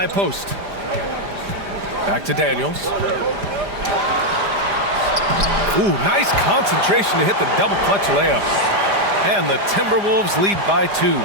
post. Back to Daniels. Ooh, nice concentration to hit the double clutch layup. And the Timberwolves lead by 2.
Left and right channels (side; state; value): left; late; 5.0 ms